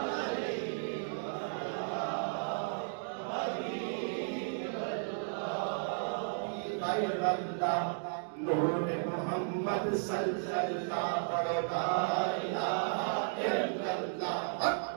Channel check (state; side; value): silent; left; digital silence